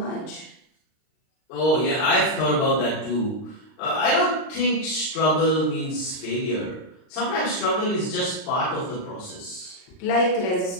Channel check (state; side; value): late; right; 39 ms